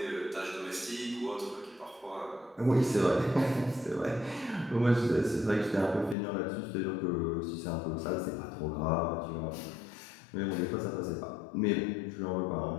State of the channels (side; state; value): right; drops out; at 6.2 s